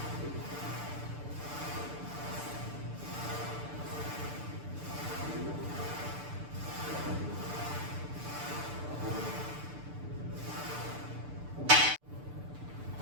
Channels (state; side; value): late; left; 6.8 ms